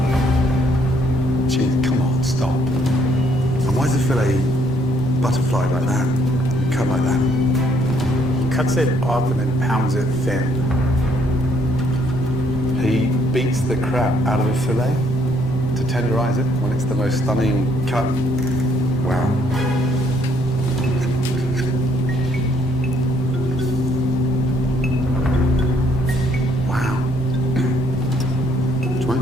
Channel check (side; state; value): both; normal; correlation 0.67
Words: Gee, come on, stop. And why is the fillet butterfly like that? Cut like that? Cuts it off and then pounds it thin. He beats the crap out of a fillet to tenderize it when it's the most stunning cut. Wow. Wow. Do you want